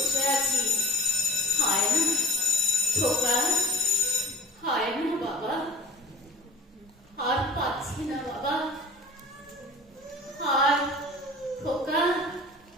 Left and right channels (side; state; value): both; normal; correlation 0.44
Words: আছি, হয় না। খোকা, হয় না বাবা, আর পাচ্ছি না বাবা, আর খোকা,